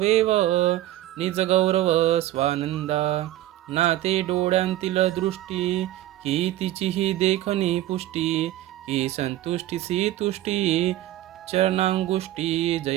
निज गौरव स्वानंदा, नाते डोळ्यांतील दृष्टी, की तिचीही देखणी पुष्टी, की संतुष्टीसी तुष्टी, चरणांगुष्टी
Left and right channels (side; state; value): left; quieter; 14.3 dB